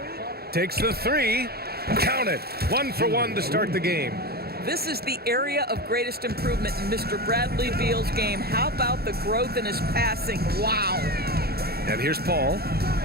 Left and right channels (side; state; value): left; late; 0.46 ms